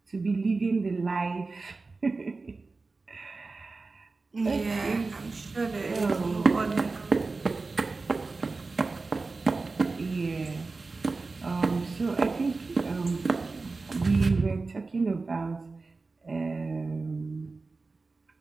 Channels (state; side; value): quieter; left; 3.8 dB